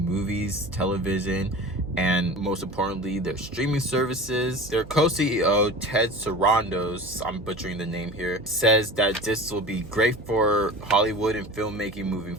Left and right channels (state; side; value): noise; right; hum, 17 dB below the sound